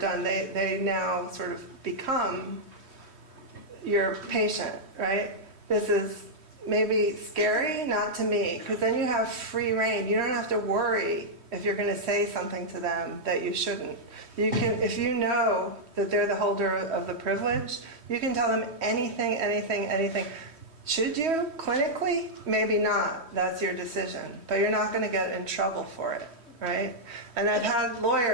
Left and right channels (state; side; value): late; left; 3.1 ms